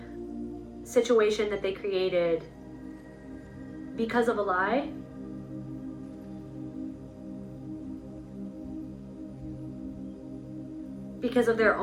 situation that they created because of a lie. Because of their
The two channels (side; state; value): both; identical; correlation 1.00